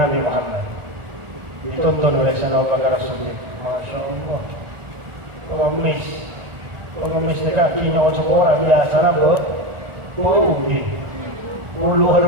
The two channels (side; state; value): left; late; 1.4 ms